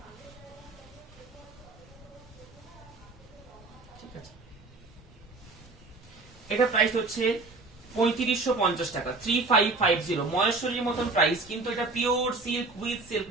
ঠিক আছে, এটা প্রাইস হচ্ছে 3550 টাকা, 3550, মহেশ্বরীর মতন প্রাইস, কিন্তু এটা pure silk with silk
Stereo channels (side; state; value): left; quieter; 3.6 dB